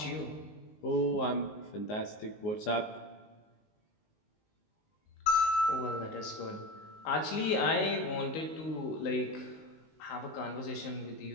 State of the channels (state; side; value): late; right; 19 ms